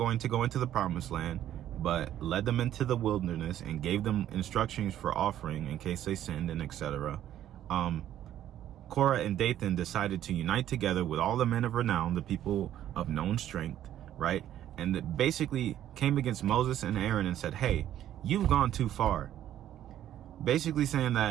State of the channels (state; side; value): quieter; left; 11.7 dB